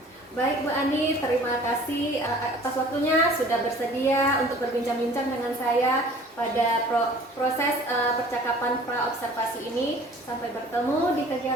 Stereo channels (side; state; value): both; normal; correlation 0.49